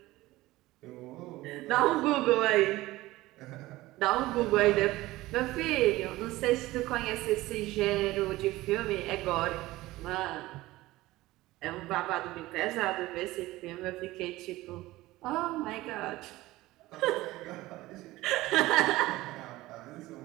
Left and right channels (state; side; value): quieter; left; 18.1 dB